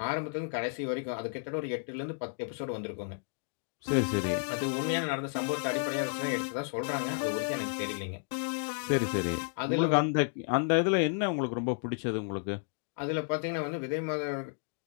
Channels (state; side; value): silent; right; 56 dB below the other